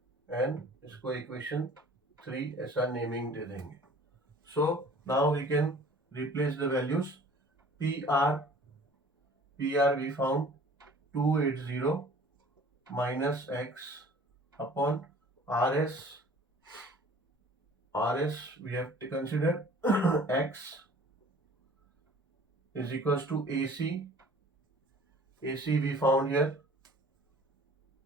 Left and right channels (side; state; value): both; normal; correlation 0.49